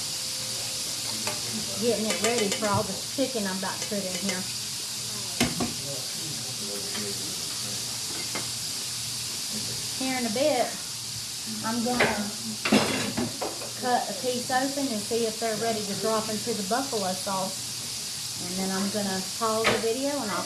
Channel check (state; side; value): identical; both; correlation 1.00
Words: Getting it ready for all the chicken I'm about to put in here. Here in a bit, I'm going to cut a piece open and see if they're ready to drop into the buffalo sauce. And then I'm going to pause the video and I'll